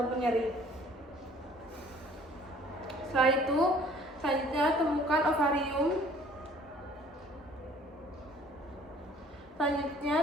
nyeri. Setelah itu, selanjutnya temukan ovarium. Selanjutnya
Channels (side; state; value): both; normal; correlation 0.55